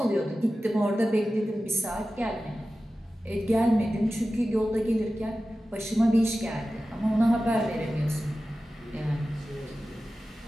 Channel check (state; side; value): normal; both; correlation 0.94